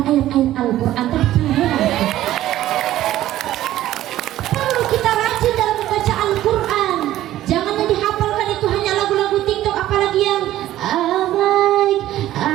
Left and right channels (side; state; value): left; quieter; 13.9 dB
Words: ayat-ayat Al-Quran. Perlu kita rajin dalam membaca Al-Quran. Jangan yang dihafalkan itu hanya lagu-lagu TikTok, apalagi yang